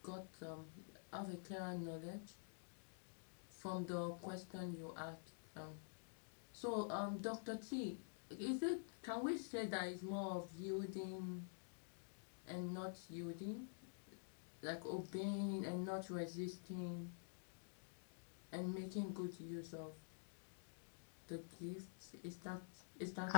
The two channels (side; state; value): right; silent; digital silence